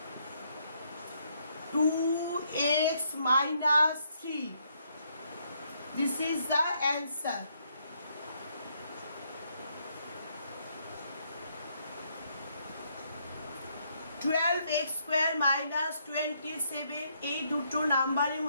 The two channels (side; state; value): both; inverted; correlation -0.73